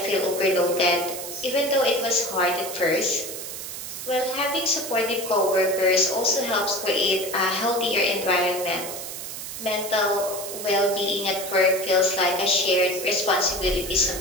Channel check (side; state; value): right; noise; hiss, 8 dB below the sound